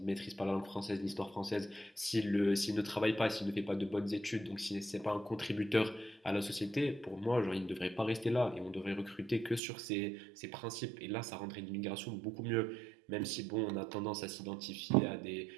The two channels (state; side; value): drops out; left; at 9.6 s